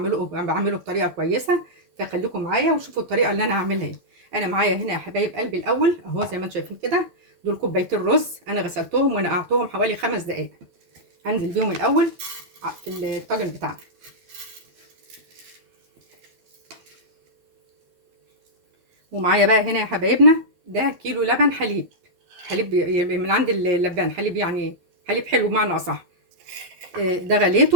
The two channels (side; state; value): left; late; 12 ms